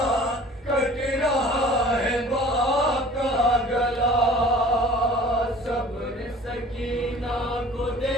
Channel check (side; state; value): both; normal; correlation 0.46